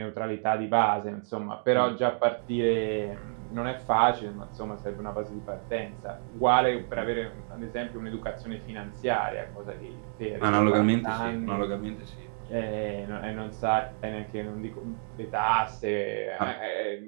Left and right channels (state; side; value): silent; left; digital silence